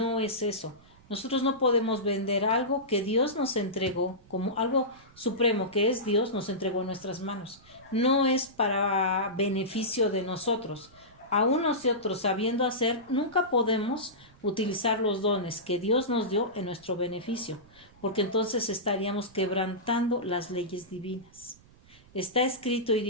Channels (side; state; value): right; noise; rumble, 26 dB below the sound